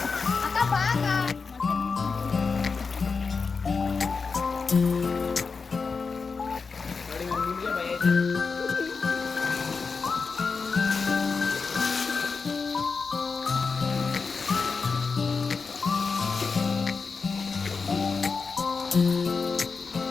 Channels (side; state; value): right; quieter; 4.8 dB